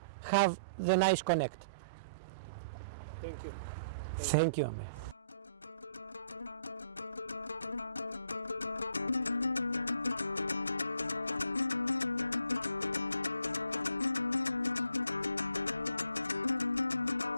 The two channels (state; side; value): inverted; both; correlation -0.62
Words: have the nice connect. Thank you. Thank you, Amir.